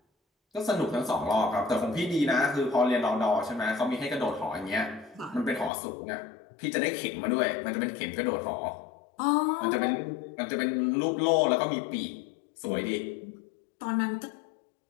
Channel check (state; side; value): drops out; right; at 5.7 s